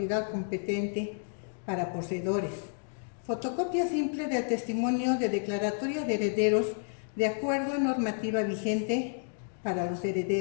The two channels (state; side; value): silent; right; digital silence